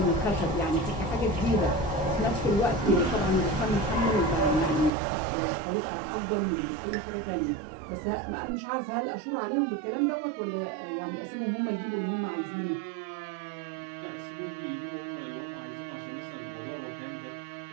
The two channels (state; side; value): drops out; left; at 4.9 s